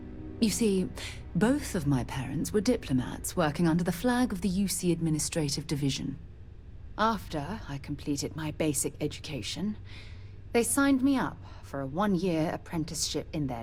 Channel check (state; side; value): identical; both; correlation 1.00